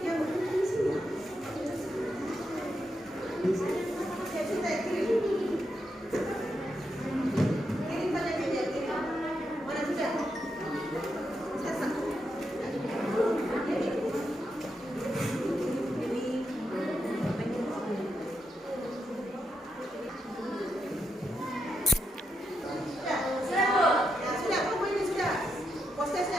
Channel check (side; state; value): both; normal; correlation 0.83